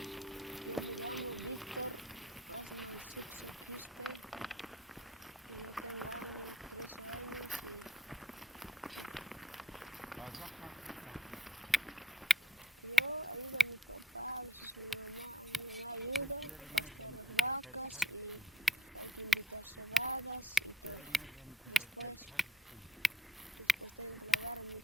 Yo me llamo Víctor Osman Suxo Quispe y yo tengo 13 años y yo ayudo a mi papá, a veces mi mamá ayuda a pastear las vacas y hay que invitar cebadas y todo. Después tengo que lavar mi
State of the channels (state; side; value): normal; both; correlation 0.65